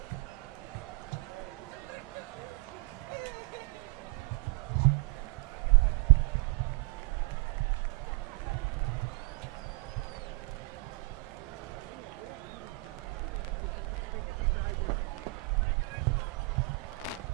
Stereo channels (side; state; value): left; quieter; 24.4 dB